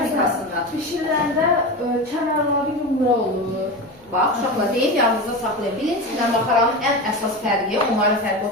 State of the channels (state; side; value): normal; both; correlation 0.24